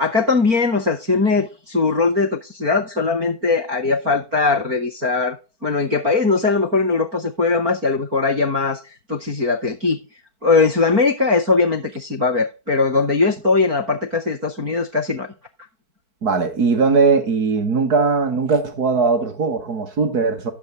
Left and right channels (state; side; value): late; left; 4.4 ms